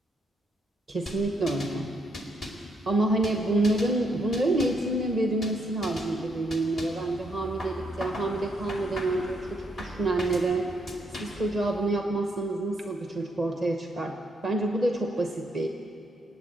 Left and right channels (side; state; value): both; normal; correlation 0.75